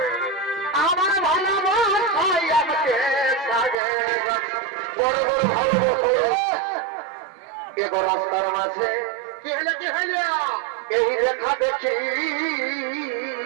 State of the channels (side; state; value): left; drops out; at 3.8 s